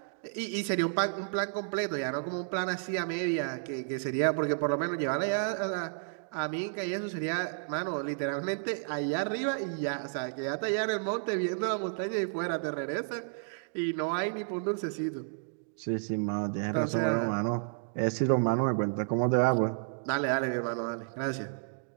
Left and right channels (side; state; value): left; silent; digital silence